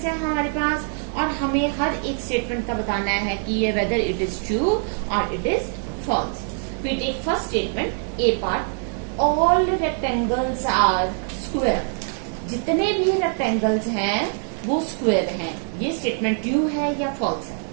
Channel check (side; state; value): left; silent; 56 dB below the other